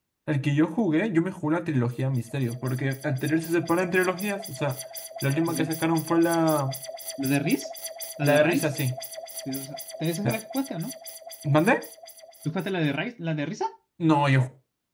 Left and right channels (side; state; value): both; identical; correlation 1.00